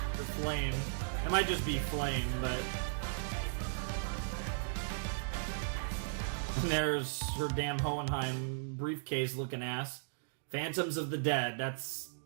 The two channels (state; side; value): silent; left; digital silence